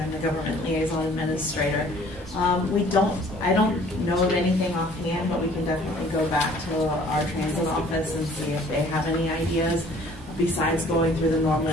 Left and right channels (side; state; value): both; normal; correlation 0.54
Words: I'm the Government Liaison Administrator. I don't know of anything offhand, but we can definitely go back to our transit office and see if they have any ideas besides going through the